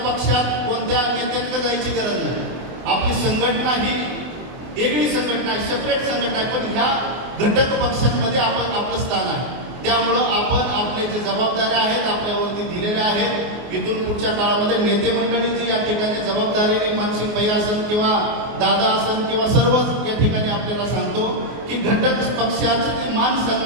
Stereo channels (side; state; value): left; late; 23 ms